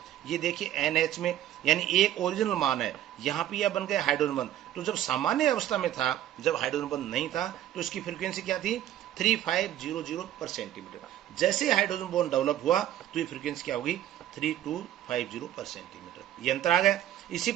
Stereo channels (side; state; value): left; quieter; 12.2 dB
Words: ये देखिए NH में, यानी एक ओरिजिनल मान है, यहाँ पे यह बन गया हाइड्रोजन बंध। तो जब सामान्य अवस्था में था, जब हाइड्रोजन बंध नहीं था, तो इसकी फ्रीक्वेंसी क्या थी 3500 पर सेंटीमीटर। जैसे हाइड्रोजन बॉन्ड डेवलप हुआ तो ये फ्रीक्वेंसी क्या होगी 3250 पर सेंटीमीटर, ये अंतर आ गया। इसी